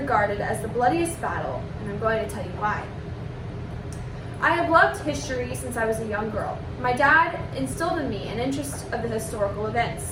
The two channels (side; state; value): both; identical; correlation 1.00